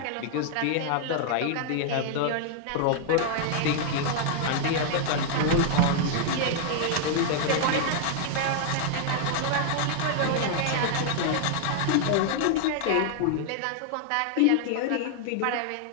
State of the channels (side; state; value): both; different; correlation 0.00